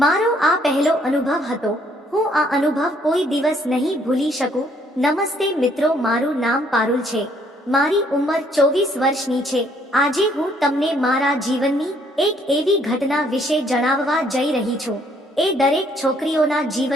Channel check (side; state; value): both; normal; correlation 0.65